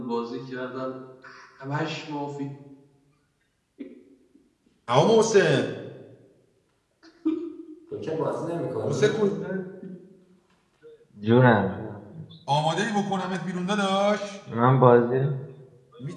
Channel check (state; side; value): identical; both; correlation 1.00